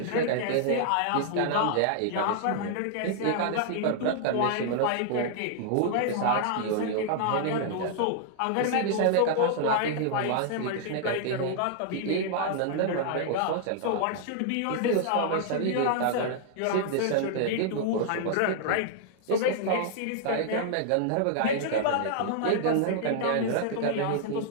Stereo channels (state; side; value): different; both; correlation -0.01